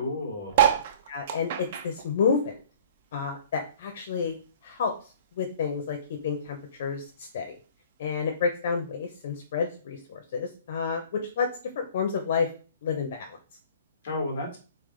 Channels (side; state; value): both; inverted; correlation -0.49